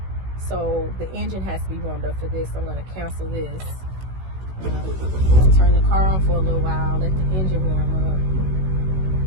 So the engine has to be warmed up for this. I'm going to cancel this. Turn the car on for a little while. Let the engine warm up.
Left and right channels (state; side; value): late; left; 16 ms